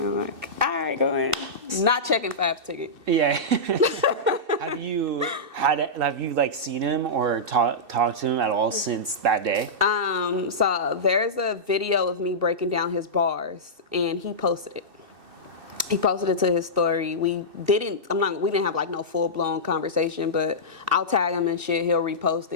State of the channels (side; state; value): left; late; 2.6 ms